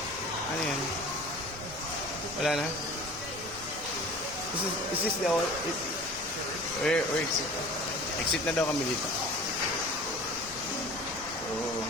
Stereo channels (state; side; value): noise; left; rumble, 17 dB below the sound